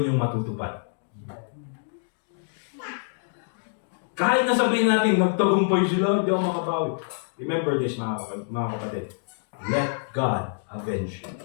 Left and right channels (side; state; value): right; silent; digital silence